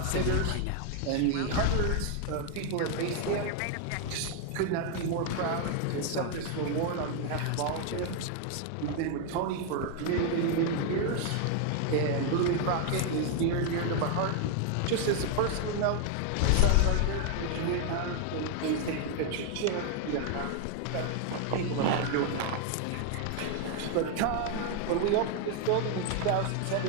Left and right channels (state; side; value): different; both; correlation 0.01